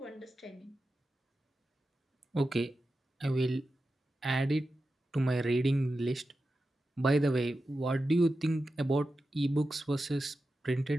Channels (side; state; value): both; normal; correlation 0.91